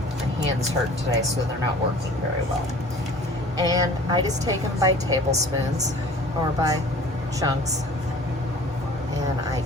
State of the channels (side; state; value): both; normal; correlation 0.46